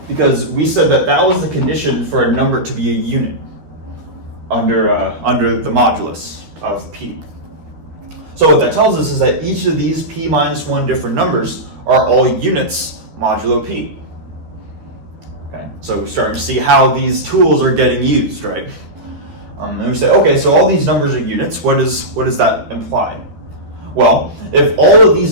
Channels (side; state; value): left; late; 13 ms